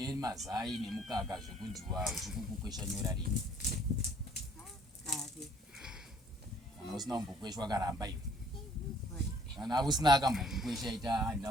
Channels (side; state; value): both; normal; correlation 0.59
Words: nemukaka zvekunziwa uchikukukwesha nyora rini. Kana usina kumbokweshwa karamba iwe. Kana usina akambokukwesha ita